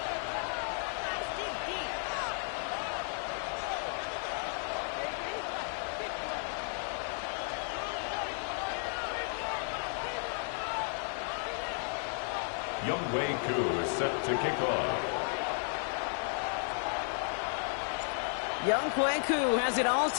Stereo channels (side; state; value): right; silent; 55 dB below the other